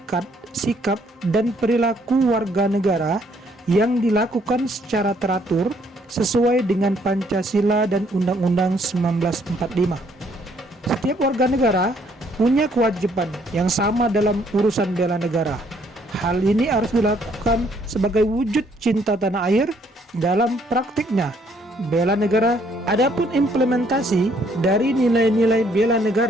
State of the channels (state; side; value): normal; both; correlation 0.66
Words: sikap, dan perilaku warga negara yang dilakukan secara teratur sesuai dengan Pancasila dan Undang-Undang 1945. Setiap warga negara punya kewajiban yang sama dalam urusan bela negara. Hal ini harus dilakukan sebagai wujud cinta tanah air dalam praktiknya bela negara. Adapun implementasi dari nilai-nilai bela